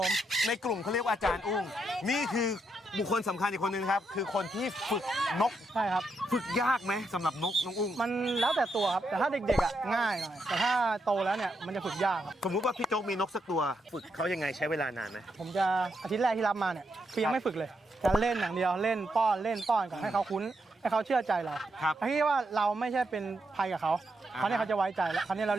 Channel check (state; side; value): normal; both; correlation 0.81